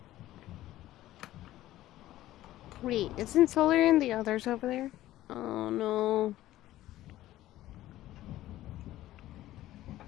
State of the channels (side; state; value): right; quieter; 14.9 dB